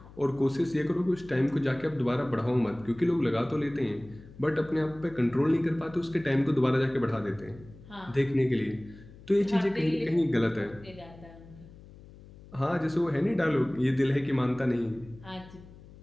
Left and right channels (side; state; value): left; noise; hum, 20 dB below the sound